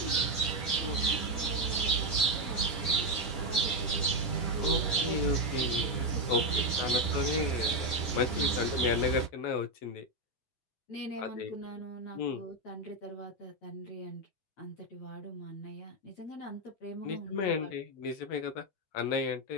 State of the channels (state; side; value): late; right; 10 ms